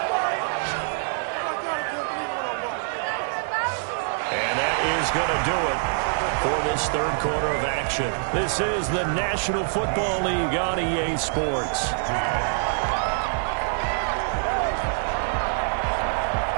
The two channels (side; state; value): left; silent; 55 dB below the other